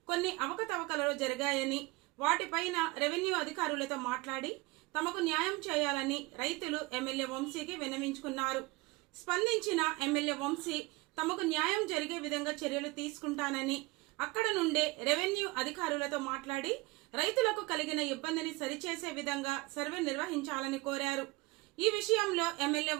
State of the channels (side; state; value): left; quieter; 23.1 dB